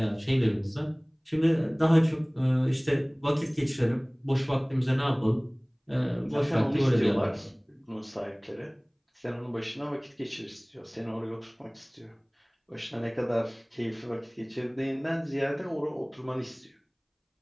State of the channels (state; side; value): identical; both; correlation 1.00